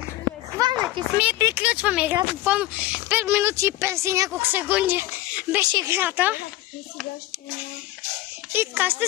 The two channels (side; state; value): right; quieter; 16.4 dB